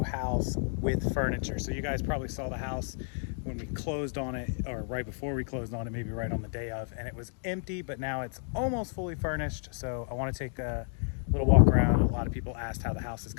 house with furniture. So you guys probably saw the house when we closed on it, or right before we closed on it, maybe right on the day of, and it was empty, but now it's almost fully furnished. So I wanna take a little walk around. A lot of people asked how the house is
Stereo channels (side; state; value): right; silent; 57 dB below the other